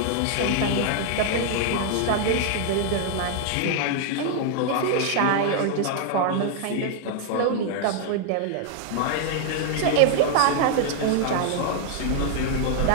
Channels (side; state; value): both; different; correlation 0.00